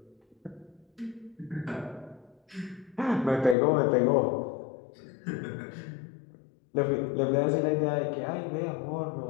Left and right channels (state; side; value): drops out; right; at 3.6 s